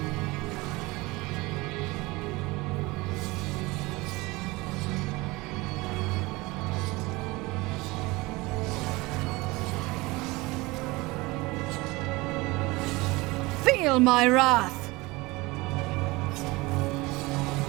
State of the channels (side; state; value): left; quieter; 22.5 dB